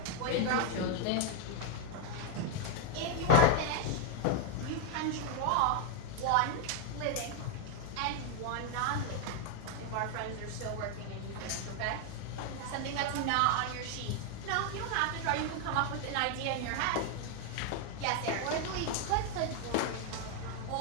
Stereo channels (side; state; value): both; different; correlation 0.00